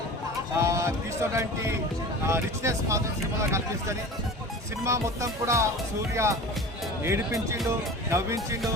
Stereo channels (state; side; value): normal; both; correlation 0.36